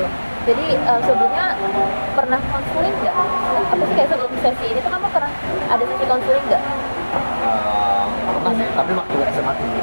Jadi sebelumnya pernah konseling nggak? Apa sih kayak sebelum sesi ini tuh kamu pernah ada sesi konseling nggak? Pernah sih, tapi waktu SMA dulu,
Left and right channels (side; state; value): both; inverted; correlation -1.00